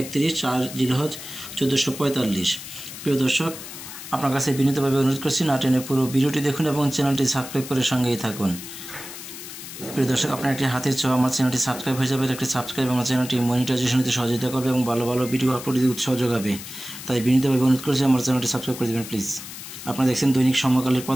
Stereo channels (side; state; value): left; noise; hiss, 12 dB below the sound